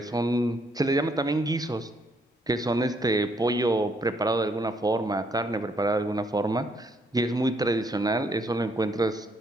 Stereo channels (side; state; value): both; normal; correlation 0.70